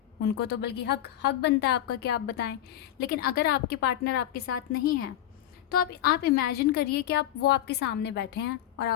उनको तो बल्कि हक बनता है आपका कि आप बताएं। लेकिन अगर आपके पार्टनर आपके साथ नहीं हैं तो आप इमेजिन करिए कि वो आपके सामने बैठे हैं और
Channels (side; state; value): right; quieter; 12.2 dB